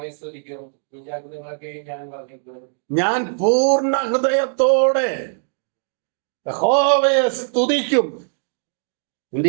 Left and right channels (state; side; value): silent; left; digital silence